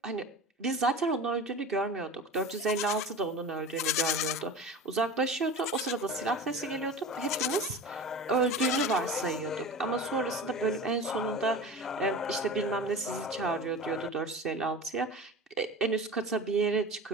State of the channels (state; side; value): normal; both; correlation 0.33